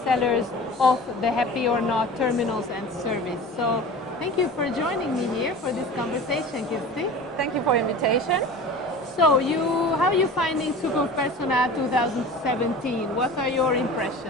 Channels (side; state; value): both; normal; correlation 0.37